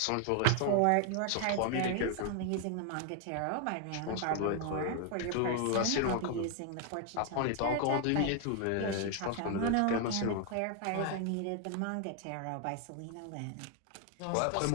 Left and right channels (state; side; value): different; both; correlation 0.00